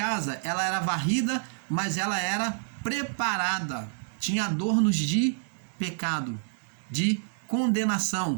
ela era varrida, mas ela era preparada. Tinha adornos de pecado, de condenação,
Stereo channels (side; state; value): left; silent; digital silence